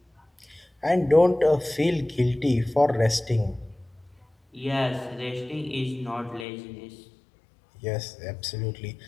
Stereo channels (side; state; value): right; drops out; at 6.5 s